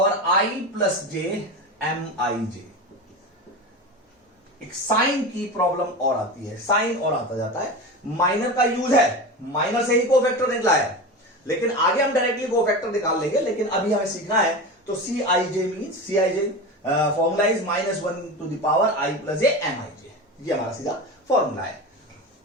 i + j MIJ। एक साइन की प्रॉब्लम और आती है, साइन और आता जाता है। माइनर का यूज है, माइनर से ही कोफैक्टर निकला है, लेकिन आगे हम डायरेक्टली कोफैक्टर निकाल लेंगे, लेकिन अभी हमें सीखना है। तो CIJ means, CIJ formula is -1 to the power i + j MIJ। ये हमारा सीधा फॉर्मूला है।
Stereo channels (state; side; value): normal; both; correlation 0.26